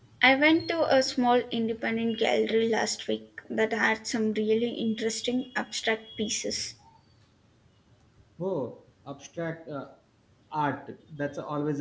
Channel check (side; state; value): both; identical; correlation 1.00